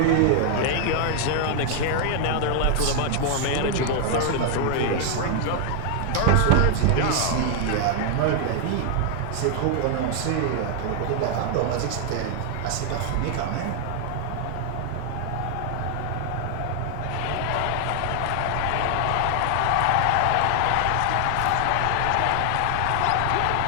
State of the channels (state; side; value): different; both; correlation 0.00